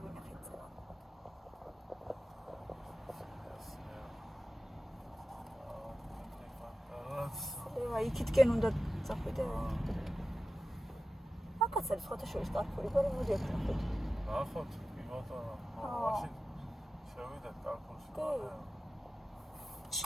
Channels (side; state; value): both; normal; correlation 0.94